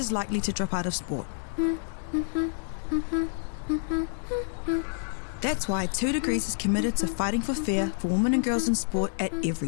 likely to drop out of sport. That's why 2 Degrees is committed to fighting for fair for women and girls in sport at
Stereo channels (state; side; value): silent; right; digital silence